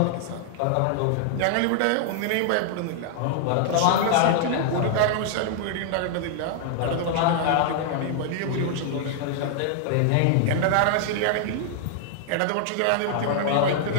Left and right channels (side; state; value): both; different; correlation -0.01